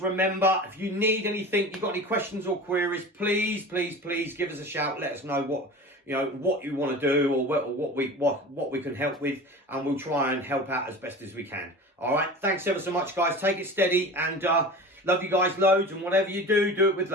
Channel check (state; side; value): normal; both; correlation 0.35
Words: remember, if you need anything, you've got any questions or queries, please give us a shout. Let us know what you want to do, or what we can help with, and we'll try and help out as best as we can. All right. Thanks ever so much, guys. Take it steady, and love you guys loads. And whatever you do, do it with